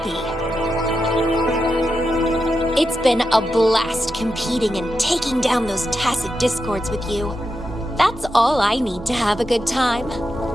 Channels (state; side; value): normal; both; correlation 0.87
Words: It's been a blast competing and taking down those tacit discords with you. That's all I need to have a good time.